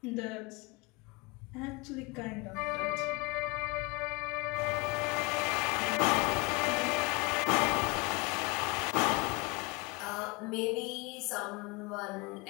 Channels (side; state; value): right; quieter; 27.9 dB